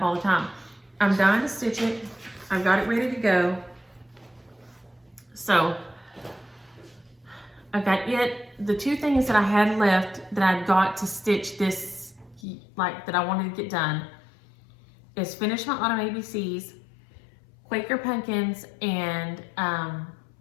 all the time. I'm dying to stitch it. I've got it ready to go. So I've got it. The two things that I had left that I'd got to stitch this, like that I wanted to get done, is finish my Autumn ABCs, Quaker pumpkins, and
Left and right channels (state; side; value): drops out; right; at 12.4 s